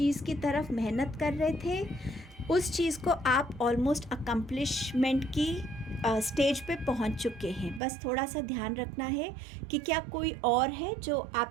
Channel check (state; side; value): drops out; left; at 7.8 s